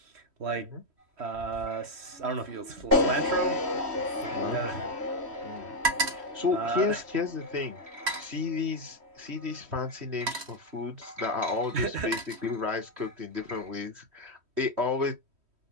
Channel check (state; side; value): late; left; 3.1 ms